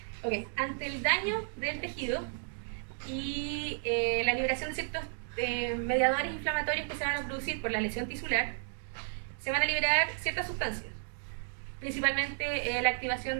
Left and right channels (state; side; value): silent; left; digital silence